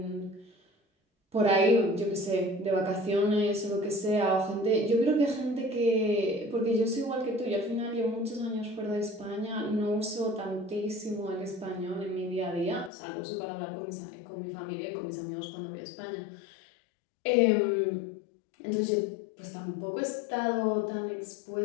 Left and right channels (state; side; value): drops out; right; at 12.9 s